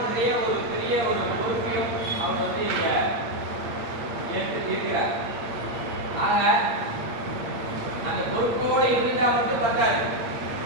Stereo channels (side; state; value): left; late; 8.7 ms